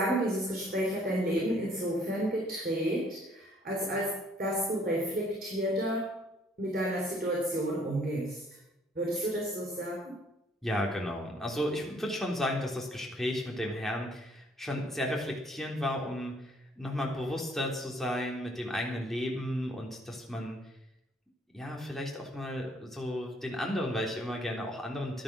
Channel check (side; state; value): both; normal; correlation 0.62